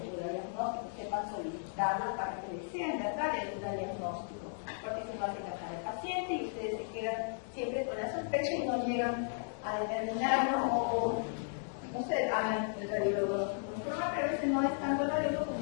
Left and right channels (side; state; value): right; silent; 54 dB below the other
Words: duda diagnóstico, sepan solicitarlo para que les sea en verdad el duda diagnóstico, porque si no hacen casar al paciente y ustedes se quedan siempre con la sospecha y no llegan a determinarlo o no sé, hagan el radiólogo pero a veces no es tanto el radiólogo como